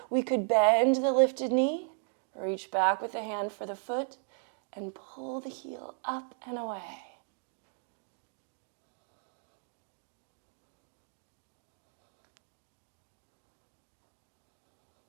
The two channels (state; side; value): silent; left; 54 dB below the other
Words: We could bend the lifted knee, reach back with the hand for the foot, and pull the heel up and away.